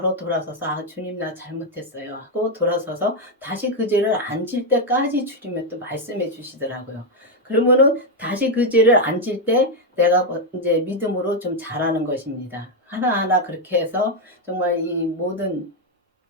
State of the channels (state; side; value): normal; both; correlation 0.02